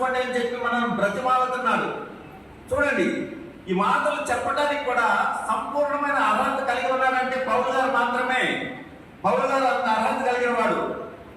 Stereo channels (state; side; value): identical; both; correlation 1.00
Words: అని చెప్పి మనల్ని బ్రతిమాలుతున్నాడు. చూడండి, ఈ మాటలు చెప్పడానికి కూడా సంపూర్ణమైన అర్హత కలిగి ఉన్నాడంటే పౌలు గారు మాత్రమే. పౌలు గారు అంత అర్హత కలిగిన వాడు.